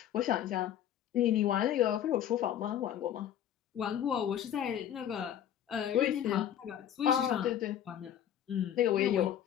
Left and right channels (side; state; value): right; quieter; 10.4 dB